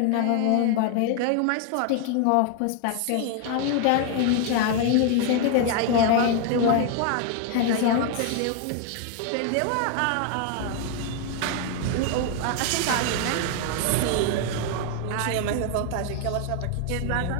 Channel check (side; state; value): both; different; correlation 0.00